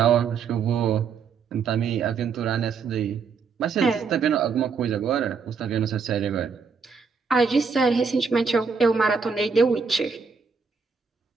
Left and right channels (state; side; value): quieter; left; 5.5 dB